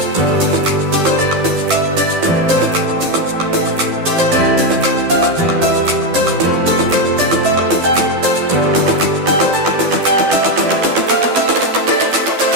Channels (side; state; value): left; late; 12 ms